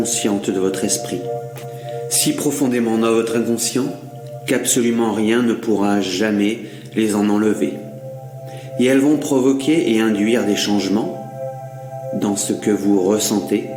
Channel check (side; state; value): both; identical; correlation 1.00